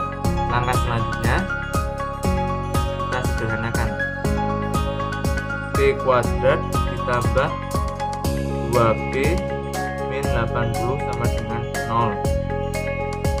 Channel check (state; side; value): identical; both; correlation 1.00